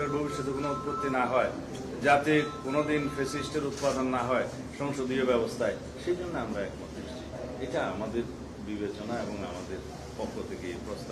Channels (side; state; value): both; identical; correlation 1.00